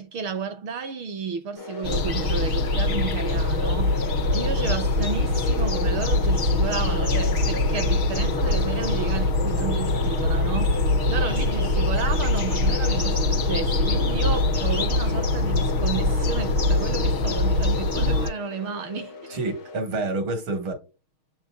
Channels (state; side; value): late; left; 6.4 ms